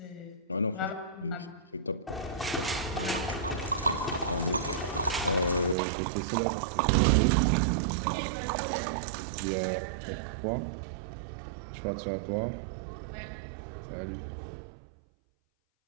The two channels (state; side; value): drops out; left; at 5.8 s